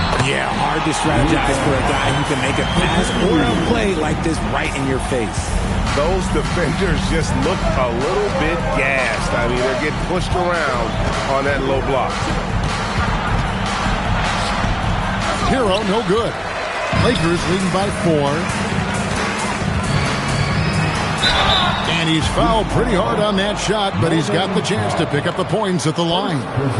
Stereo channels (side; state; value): both; identical; correlation 1.00